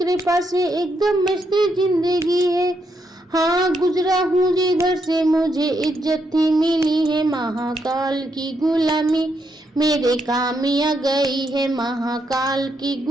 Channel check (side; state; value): both; normal; correlation 0.79